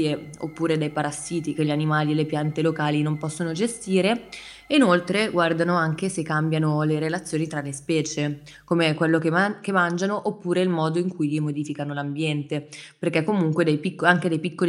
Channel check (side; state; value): both; identical; correlation 1.00